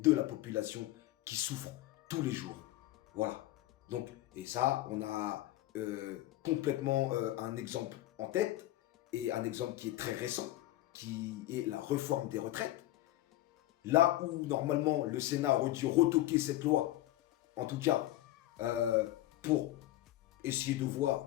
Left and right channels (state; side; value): quieter; right; 15.5 dB